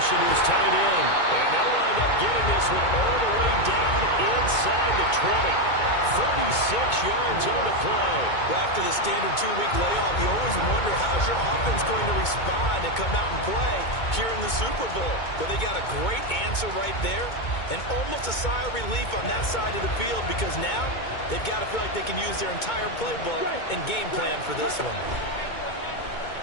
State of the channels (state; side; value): late; right; 2.2 ms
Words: to his tight end. And they'll wind up getting this one all the way down inside the 20. 36 yards on the play. Well, after the standard 2-week layoff, you always wonder how's your offense going to respond and come out and play here in the Super Bowl. But they got a great answer right there and almost a sigh of relief on that side of the field because now they've got to feel like they can use their entire playbook and game plan for this one.